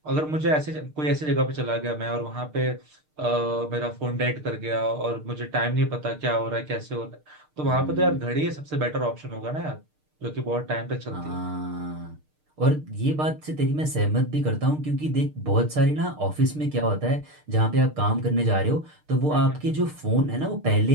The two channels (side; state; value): left; late; 6.6 ms